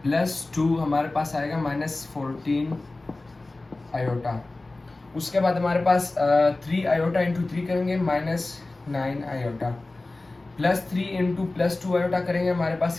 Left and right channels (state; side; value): quieter; right; 3.1 dB